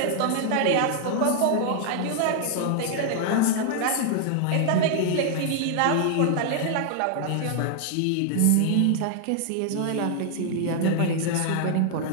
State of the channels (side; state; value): both; different; correlation 0.00